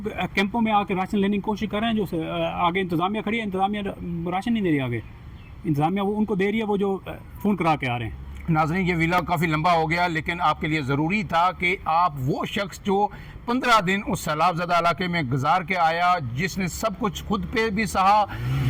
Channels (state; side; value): identical; both; correlation 1.00